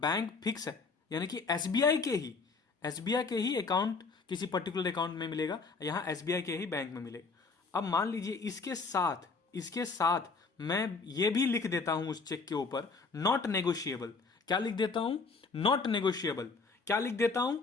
फिक्स है, यानी कि एसबीआई के ही अकाउंट किसी पर्टिकुलर अकाउंट में मिलेगा, यहां एसबीआई के ही बैंक में मिलेगा। अब मान लीजिए इसके साथ मैं ये भी लिख देता हूं उस चेक के ऊपर नॉट नेगोशिएबल। क्या लिख देता हूं? Not negotiable. क्या लिख देता हूं?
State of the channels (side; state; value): right; quieter; 4.4 dB